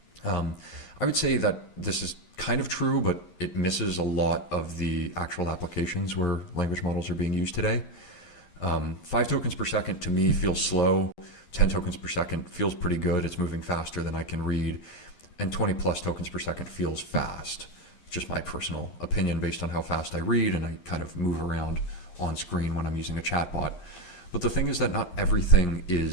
I would say that this is kind of true, but it misses a lot of the actual applications where language models are being used today. 5 tokens per second to me feels slow. 10 tokens per second feels pretty good. It's moving faster than I can read. And 20 plus tokens per second feels fast. Just my personal opinion based on how fast I read and I kind of move around on screen when I'm using a chatbot. But the thing is that not everything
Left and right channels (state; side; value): late; right; 11 ms